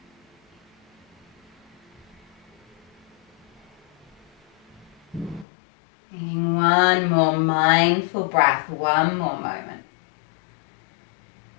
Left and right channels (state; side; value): drops out; right; at 5.5 s